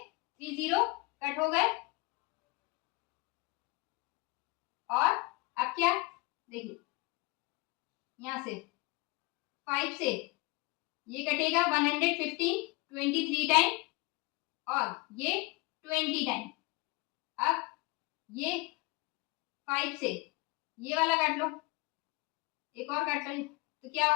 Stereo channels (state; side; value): quieter; right; 24.4 dB